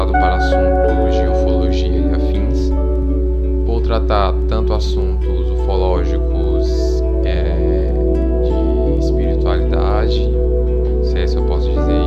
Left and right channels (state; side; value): identical; both; correlation 1.00